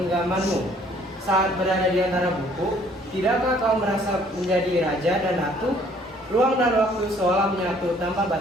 Saat berada di antara buku, tidakkah kau merasa menjadi raja dan ratu? Ruang dan waktu seolah menyatu tanpa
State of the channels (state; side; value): normal; both; correlation 0.60